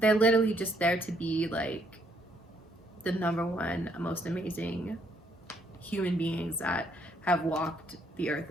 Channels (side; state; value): both; normal; correlation 0.69